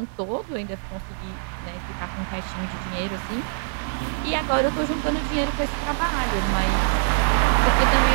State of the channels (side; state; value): left; silent; digital silence